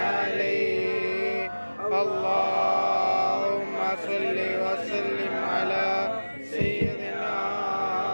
اللهم صل وسلم على سيدنا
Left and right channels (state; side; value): inverted; both; correlation -1.00